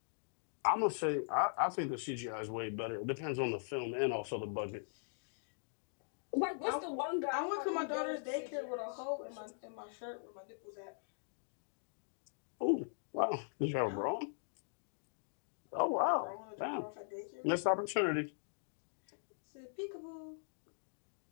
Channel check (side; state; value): right; silent; digital silence